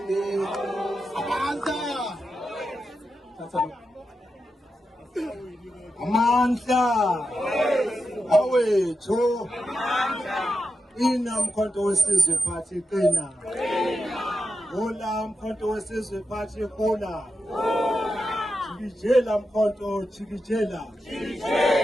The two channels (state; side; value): normal; both; correlation 0.88